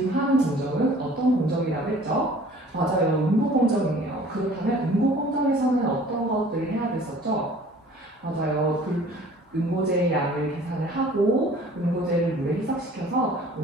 하는 공정은 어떤 공정이라고 했죠? 맞아요. 응고 공정이에요. 그렇다면 응고 공정에서는 어떤 것들을 해야 됐었죠? 맞아요. 응고제의 양을 계산을 하고 응고제를 물에 희석시켜서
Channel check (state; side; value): normal; both; correlation 0.50